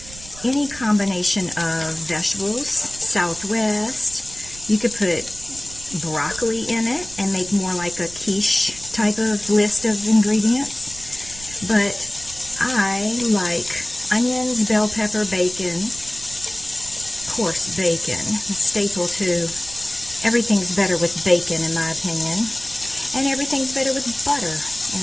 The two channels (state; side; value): noise; right; rumble, 16 dB below the sound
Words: any combination of vegetables, Southwest. You could put broccoli in it and make more like a quiche type of list of ingredients. But I like onions, bell pepper, bacon, coarse bacon. A staple to everything's better with bacon in my opinion. And everything's better with butter